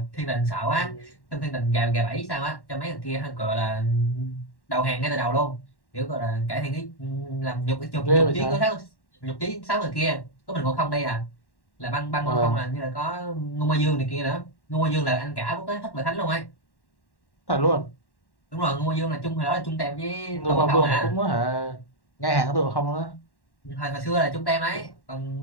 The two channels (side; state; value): right; late; 1.1 ms